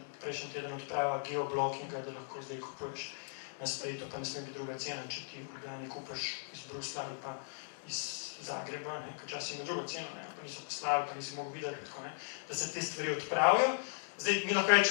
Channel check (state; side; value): silent; right; digital silence